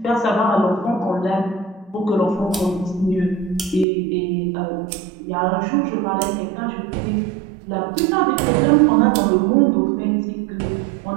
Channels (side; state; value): left; drops out; at 3.9 s